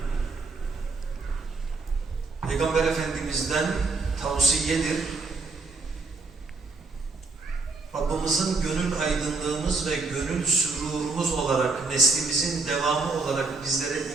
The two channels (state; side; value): quieter; left; 3.9 dB